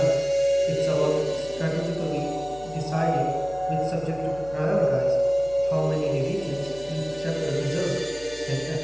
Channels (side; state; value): left; noise; hum, 19 dB below the sound